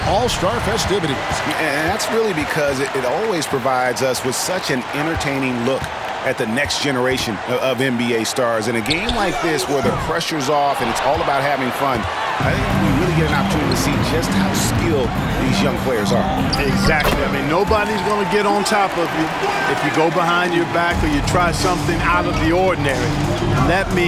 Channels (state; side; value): identical; both; correlation 1.00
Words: all-star festivities. And that's really because it always provides us with such an entertaining look at the next generation of NBA stars. In a game like this where the pressure's off and it's all about having fun, I think we really get an opportunity to see just how skilled these young players are. Exactly. I mean, nobody's going to get on top of you if you go behind your back or you try something out of the ordinary. And that